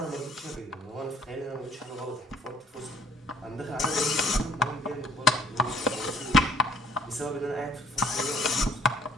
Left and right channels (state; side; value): normal; both; correlation 0.58